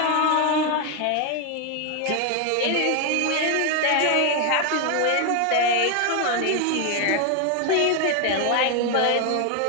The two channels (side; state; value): both; different; correlation 0.01